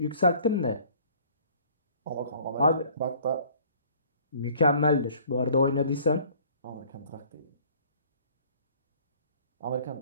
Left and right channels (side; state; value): both; inverted; correlation -0.54